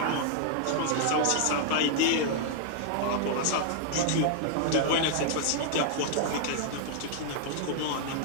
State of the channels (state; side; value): different; both; correlation -0.01